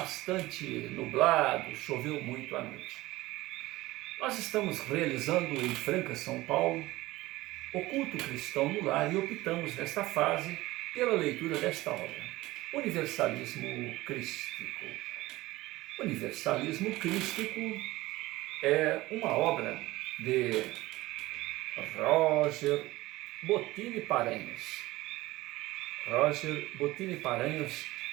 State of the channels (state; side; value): quieter; left; 18.6 dB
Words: nublado, choveu muito à noite. Nós estamos realizando em Franca, São Paulo, o culto cristão no lar e optamos nesta fase pela leitura desta obra, Universalismo Crístico. Universalismo Crístico é uma obra de Roger Bottini Paranhos. Roger Bottini Paranhos,